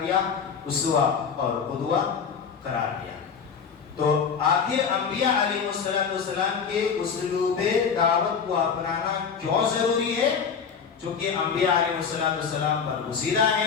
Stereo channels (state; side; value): quieter; right; 6.4 dB